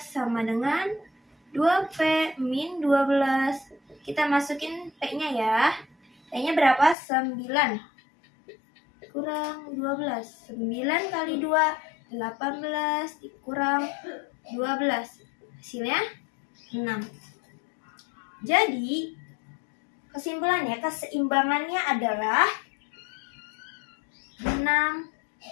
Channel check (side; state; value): right; drops out; at 7.0 s